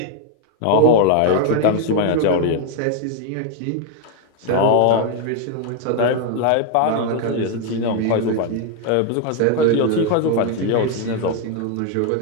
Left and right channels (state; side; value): different; both; correlation 0.00